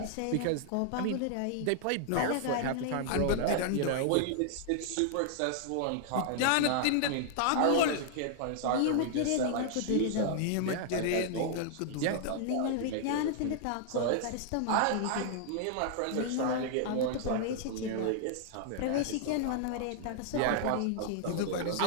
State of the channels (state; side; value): different; both; correlation -0.01